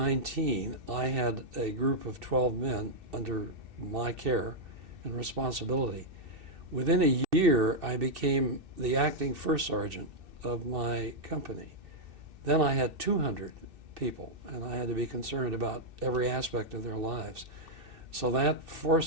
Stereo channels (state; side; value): late; left; 2.7 ms